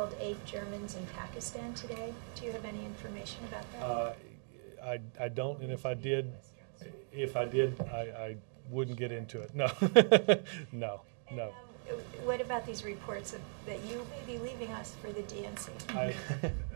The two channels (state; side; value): silent; left; 52 dB below the other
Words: 8 Germans in Pakistan today. Do you have any information about that? I don't, and if I did, I wouldn't get into it. No, no. What about these reports that you may be leaving us for the DNC?